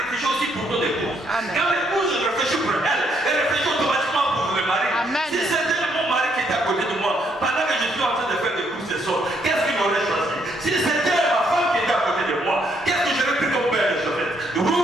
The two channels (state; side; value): normal; both; correlation 0.72